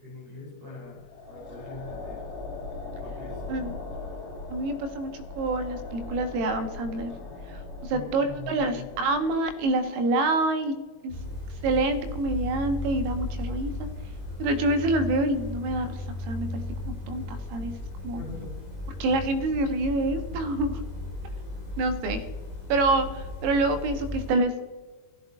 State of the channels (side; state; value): left; late; 21 ms